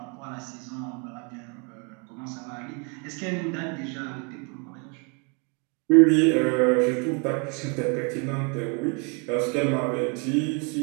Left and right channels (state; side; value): quieter; left; 34.8 dB